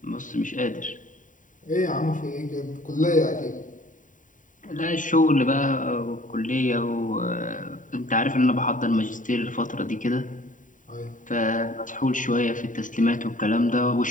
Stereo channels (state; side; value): late; right; 0.38 ms